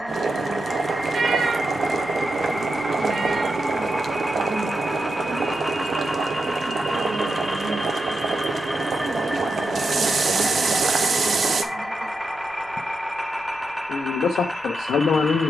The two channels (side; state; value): left; noise; rumble, 29 dB below the sound